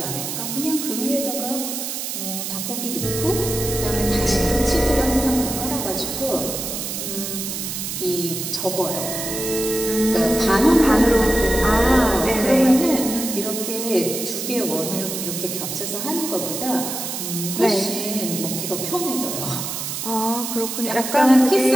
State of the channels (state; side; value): noise; right; hiss, 5 dB below the sound